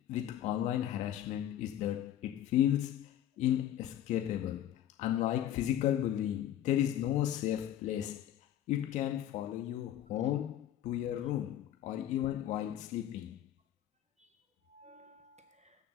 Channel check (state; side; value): quieter; right; 11.5 dB